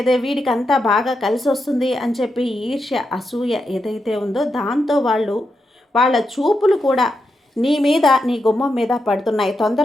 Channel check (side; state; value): both; normal; correlation 0.86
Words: వీడికి అంతా బాగా కలిసి వస్తుంది అని చెప్పి ఈర్ష్య, అసూయ ఏదైతే ఉందో దాంతో వాళ్ళ చూపులు కూడా నీ మీద, నీ గుమ్మం మీద పడుతున్నాయి.